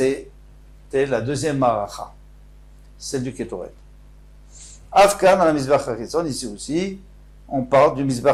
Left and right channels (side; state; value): both; identical; correlation 1.00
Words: la deuxième maracha, celle du Ketoret. Afkan, à la Mizbeach HaChitzon, ici aussi, on parle du